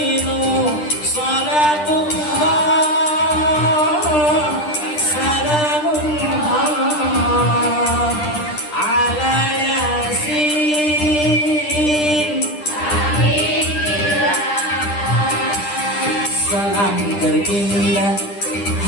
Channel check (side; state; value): right; late; 10 ms